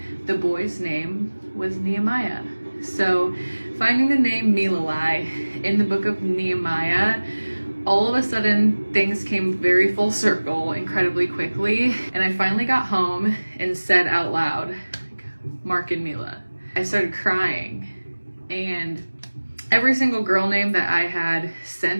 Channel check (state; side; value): inverted; both; correlation -1.00